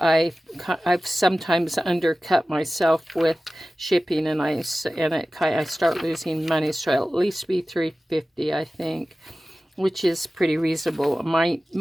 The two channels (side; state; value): both; normal; correlation 0.96